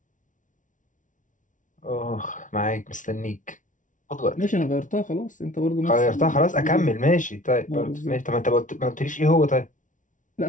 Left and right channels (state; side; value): late; right; 0.37 ms